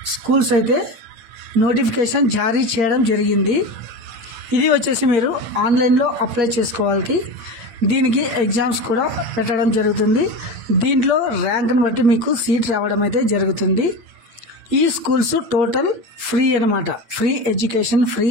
schools అయితే notification జారీ చేయడం జరిగింది. ఇది వచ్చేసి మీరు ఆన్లైన్లో అప్లై చేసుకోవాలి. దీనికి ఎగ్జామ్స్ కూడా పెట్టడం జరుగుతుంది. దీంట్లో ర్యాంక్ని బట్టి మీకు సీట్ రావడం అయితే జరుగుతుంది. ఈ స్కూల్స్ టోటల్ ఫ్రీ అన్నమాట. ఫ్రీ ఎడ్యుకేషన్, ఫ్రీ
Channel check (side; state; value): left; late; 8.9 ms